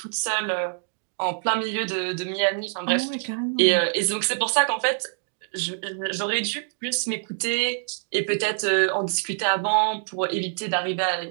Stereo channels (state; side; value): silent; left; digital silence